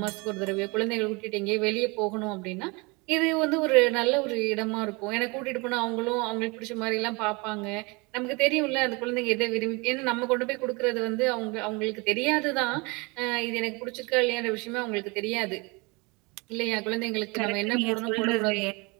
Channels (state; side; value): quieter; left; 27.5 dB